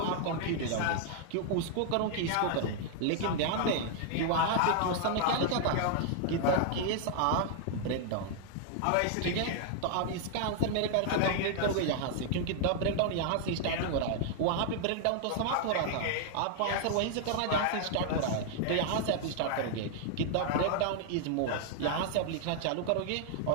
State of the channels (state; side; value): different; both; correlation 0.00